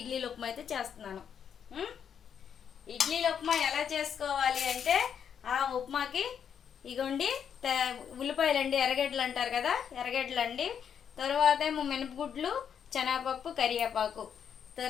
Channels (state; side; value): quieter; right; 8.0 dB